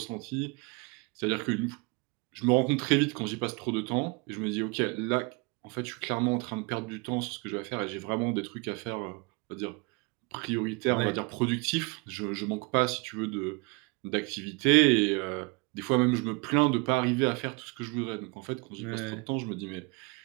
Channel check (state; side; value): quieter; left; 29.7 dB